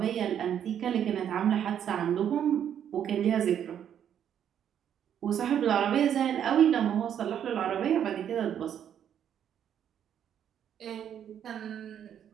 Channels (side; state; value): left; quieter; 9.3 dB